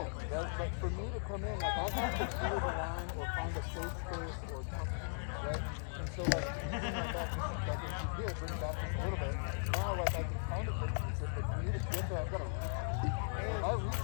Right? But for me to come in, like I have to clear the line or find a safe space or something, right? And so like, you bring that back just like if you did, bring it back just a little bit. Now like I can kind of hit you, but for me to get there, I've got to reach. And if I reach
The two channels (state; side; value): silent; right; digital silence